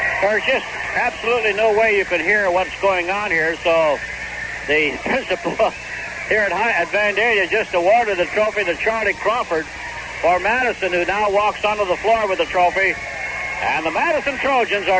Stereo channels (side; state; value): both; identical; correlation 1.00